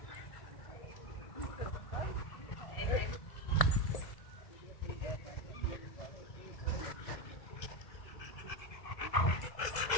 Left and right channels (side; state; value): right; late; 1.7 ms